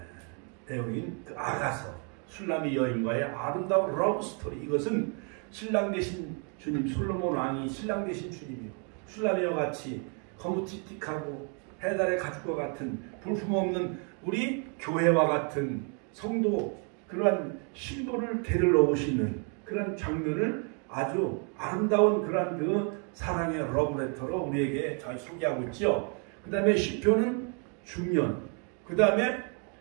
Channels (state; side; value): quieter; left; 39.1 dB